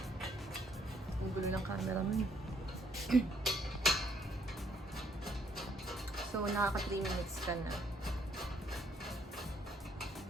Ang gulo ng camera mo. So, nakaka 3 minutes ka na.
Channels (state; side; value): normal; both; correlation 0.68